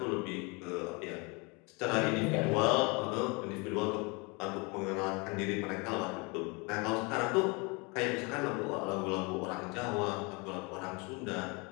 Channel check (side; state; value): right; quieter; 29.2 dB